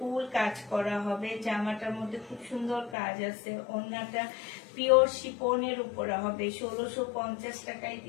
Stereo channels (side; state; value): right; drops out; at 3.0 s